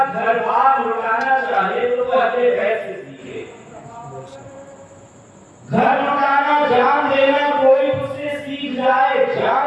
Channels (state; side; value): identical; both; correlation 1.00